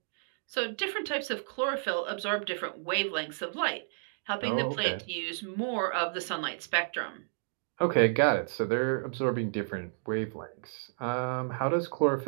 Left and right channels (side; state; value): left; silent; digital silence